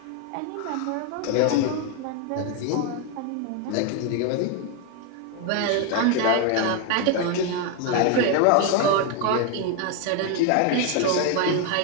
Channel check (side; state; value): both; different; correlation 0.01